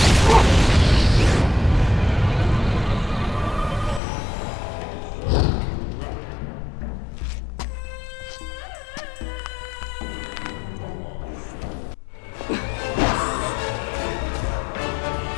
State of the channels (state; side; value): drops out; right; at 4.0 s